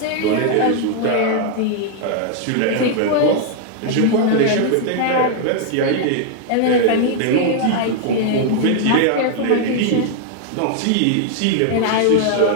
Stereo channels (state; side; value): different; both; correlation 0.00